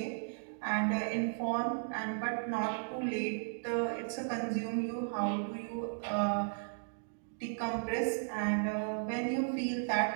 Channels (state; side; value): silent; left; digital silence